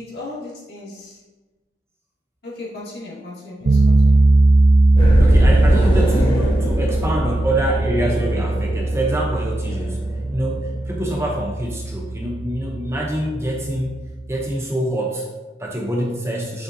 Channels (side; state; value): both; normal; correlation 0.90